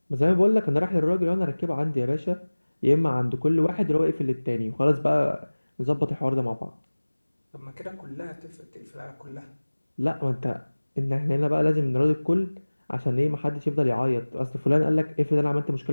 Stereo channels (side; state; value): both; inverted; correlation -1.00